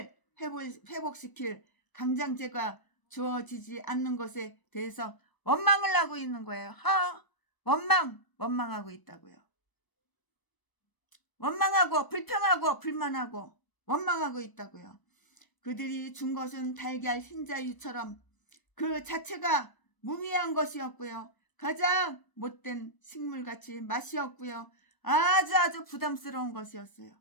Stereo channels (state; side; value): late; right; 1.0 ms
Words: 회복시킬 강장제가 주어지지 않는 것에 대해서 원망을 하고 있는 거예요. 원망하고 있다고요. 원망하고 불평하고 불만하고 원망하고 있다고요. 그들이 준 것은 달걀 흰자유처럼 그 자체가 무미한 것이었고요. 가장 못된 식물같이 맛이 없고요. 아주 부담스러운 것이었어요.